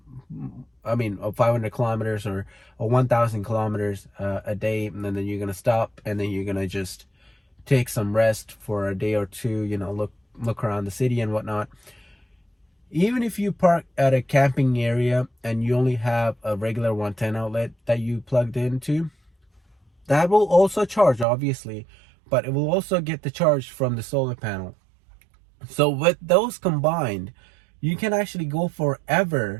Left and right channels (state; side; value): drops out; left; at 21.2 s